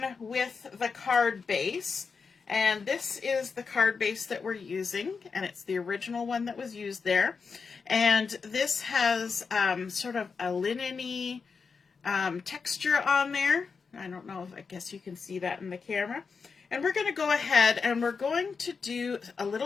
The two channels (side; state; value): right; quieter; 5.2 dB